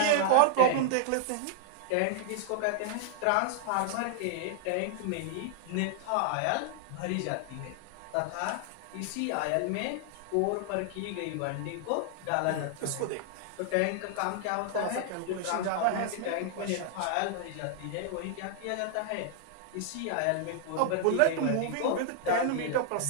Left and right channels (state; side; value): different; both; correlation -0.01